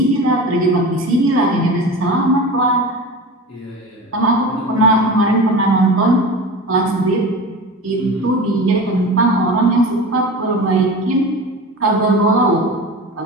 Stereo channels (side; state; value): both; normal; correlation 0.32